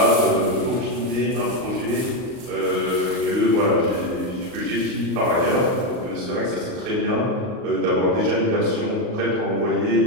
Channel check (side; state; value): left; late; 38 ms